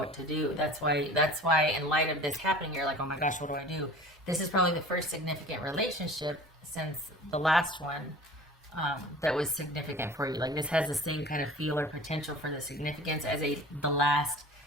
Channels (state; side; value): normal; both; correlation 0.42